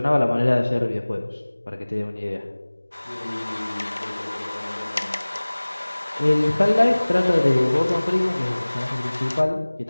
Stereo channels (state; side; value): inverted; both; correlation -1.00